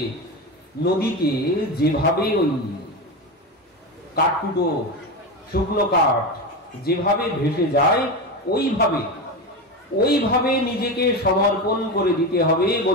নদীতে যেভাবে ওই কাঠকুটো শুকনো কাঠ যেভাবে ভেসে যায় ওইভাবে নিজেকে সমর্পণ করে দিতে হবে।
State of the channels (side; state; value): both; normal; correlation 0.19